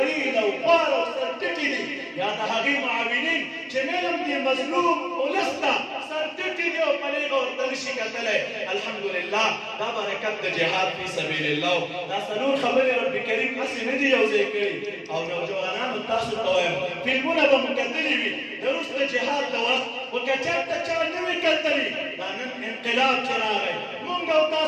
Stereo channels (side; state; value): both; identical; correlation 1.00